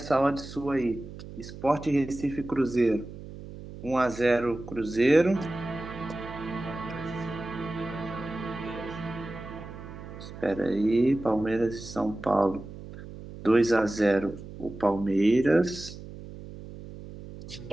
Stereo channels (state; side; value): noise; right; hum, 13 dB below the sound